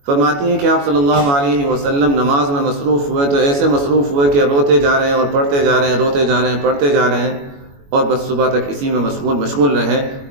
فرماتی ہیں کہ آپ صلی اللہ علیہ وسلم نماز میں مصروف ہوئے تو ایسے مصروف ہوئے کہ روتے جا رہے ہیں اور پڑھتے جا رہے ہیں، روتے جا رہے ہیں پڑھتے جا رہے ہیں، اور بس صبح تک اسی میں مشغول رہے۔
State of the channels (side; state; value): left; late; 21 ms